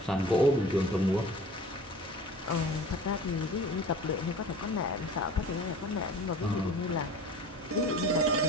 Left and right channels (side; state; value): both; normal; correlation 0.41